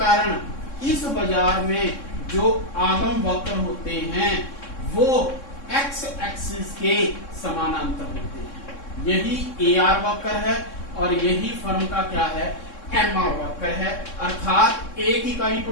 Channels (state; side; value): late; right; 3.6 ms